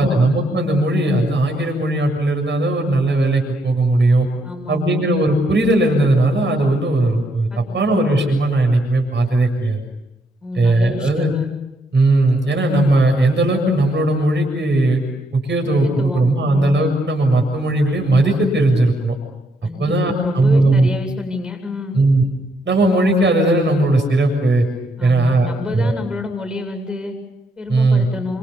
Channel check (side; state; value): both; normal; correlation 0.75